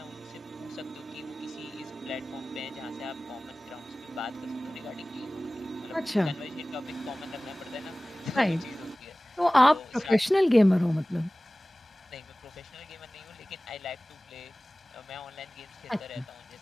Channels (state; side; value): normal; both; correlation 0.98